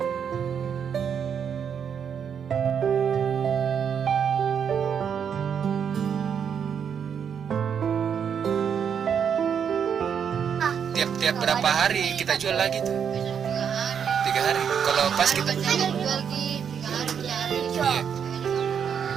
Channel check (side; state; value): left; quieter; 7.6 dB